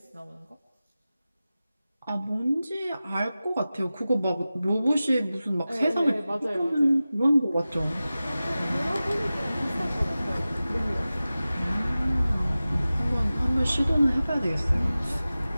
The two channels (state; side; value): inverted; both; correlation -0.96